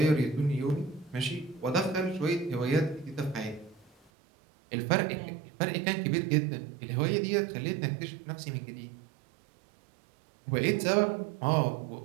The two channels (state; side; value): drops out; left; at 4.1 s